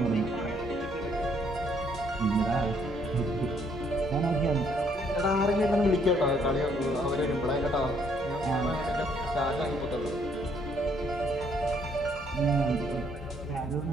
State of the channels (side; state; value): both; normal; correlation 0.67